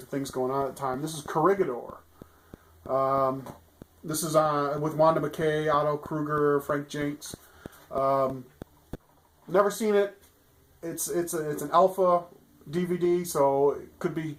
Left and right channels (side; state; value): both; identical; correlation 1.00